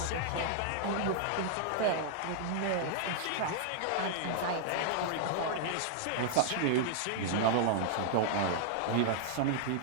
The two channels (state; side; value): different; both; correlation -0.01